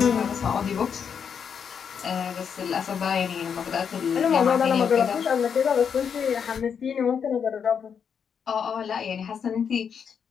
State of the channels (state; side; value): quieter; right; 7.1 dB